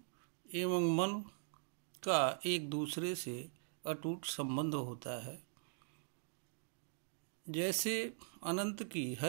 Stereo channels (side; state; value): left; silent; digital silence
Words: एवं मन का एक दूसरे से अटूट संबंध होता है। जैसे अनंत की